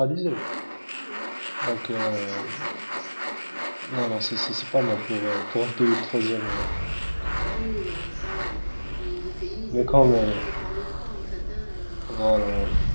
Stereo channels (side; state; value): both; inverted; correlation -1.00